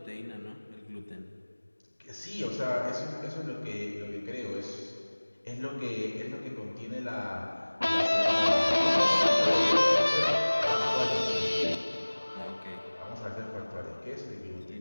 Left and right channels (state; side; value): inverted; both; correlation -1.00